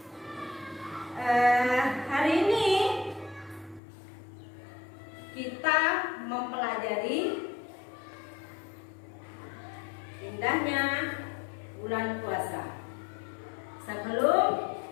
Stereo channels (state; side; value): drops out; right; at 3.8 s